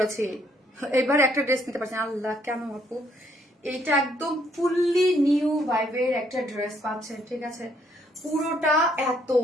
এবার একটা ড্রেস নিতে পারছি না। আল্লাহ কেন আপু, এইটা একদম ফুললি নিউ ভাইবের একটা ড্রেস পাচ্ছেন, ঠিক আছে? পুরোটা এত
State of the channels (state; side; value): normal; both; correlation 0.69